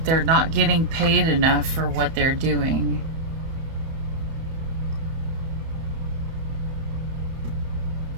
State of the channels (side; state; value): left; late; 31 ms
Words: they're not getting paid enough for what they're doing.